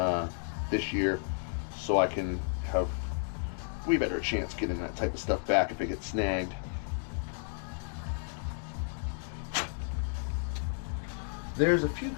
this year, so I can have way better chance getting that type of stuff back if it gets snagged. There's a few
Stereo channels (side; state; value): right; silent; 56 dB below the other